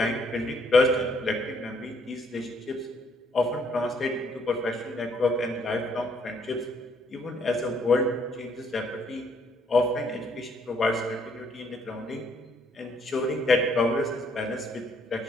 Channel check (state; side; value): normal; both; correlation 0.67